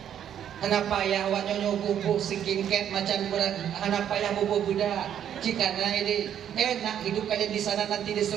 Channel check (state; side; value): quieter; left; 9.7 dB